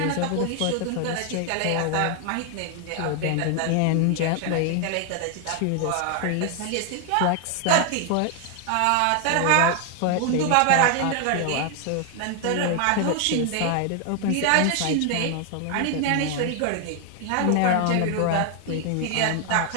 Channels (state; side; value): different; both; correlation 0.00